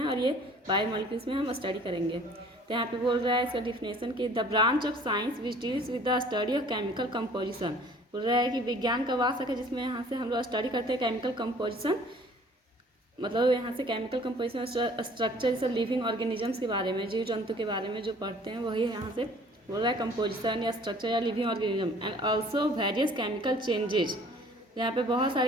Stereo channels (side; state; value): both; normal; correlation 0.52